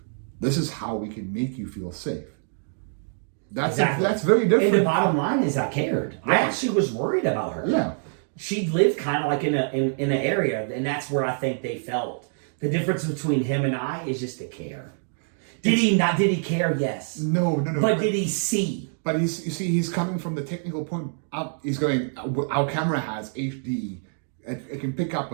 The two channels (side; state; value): left; silent; digital silence